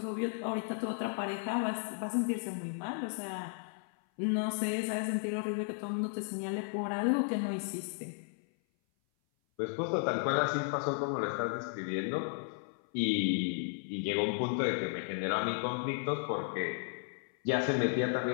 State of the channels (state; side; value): silent; right; 55 dB below the other